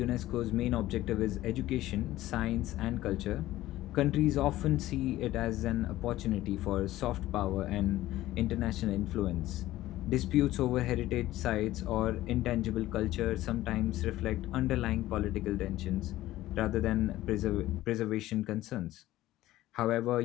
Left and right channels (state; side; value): quieter; right; 15.6 dB